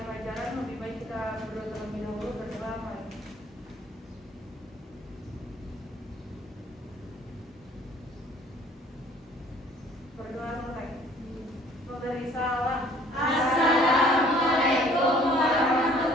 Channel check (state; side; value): normal; both; correlation 0.56